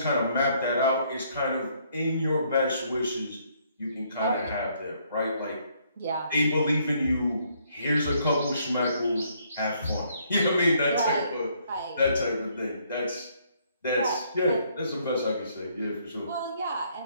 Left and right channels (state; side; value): inverted; both; correlation -0.68